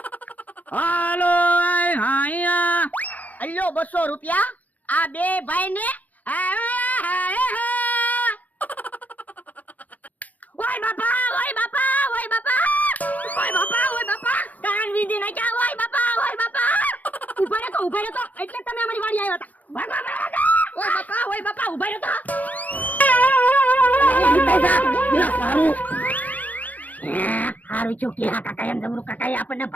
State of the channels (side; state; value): right; late; 0.078 ms